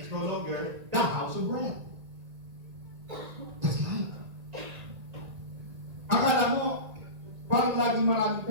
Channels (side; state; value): left; late; 1.9 ms